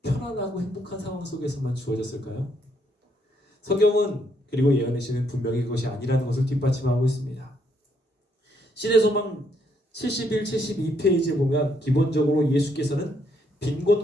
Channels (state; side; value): normal; both; correlation 0.72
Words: 편안하고 행복한 상황 속에서만 주어졌을까요? 성경은 그리고 예언의 시는 분명히 그것이 아니라는 것을 뒷받침하고 있습니다. 신의 소망 71, 72페이지에 보면 기본적으로 예수께서는